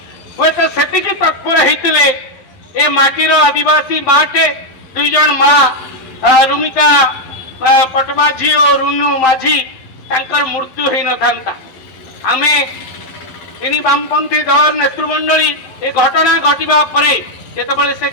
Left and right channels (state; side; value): late; right; 11 ms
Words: हुए तो से तत्पर होते ए माटीर आदिवासी माटे दुई जन माँ रुमिका पटमाझी और रुनु माझी तांकर मृत्यु हो न था। आमे इन वामपंथी दल नेतृमंडली ए घटना घटवा जिते से